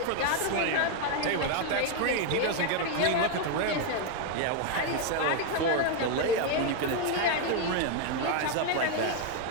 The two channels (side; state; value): both; different; correlation 0.01